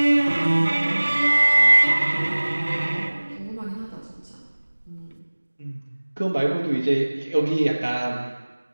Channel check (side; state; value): both; inverted; correlation -1.00